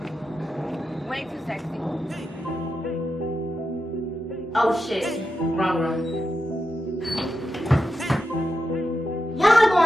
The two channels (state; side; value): normal; both; correlation 0.88